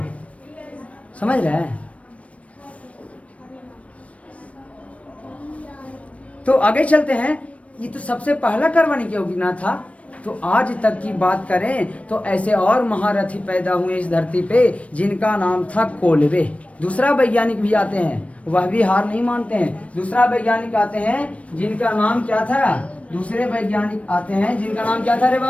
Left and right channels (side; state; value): right; late; 0.064 ms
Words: समझ रहे हैं? तो आगे चलते हैं। ये तो सबसे पहला कार्बनिक यौगिक ना था। तो आज तक की बात करें तो ऐसे और महारथी पैदा हुए इस धरती पे जिनका नाम था कोलबे। दूसरा वैज्ञानिक भी आते हैं, वह भी हार नहीं मानते हैं। दूसरा वैज्ञानिक आते हैं जिनका नाम क्या था? दूसरे वैज्ञानिक आते हैं जिनका नाम क्या था रे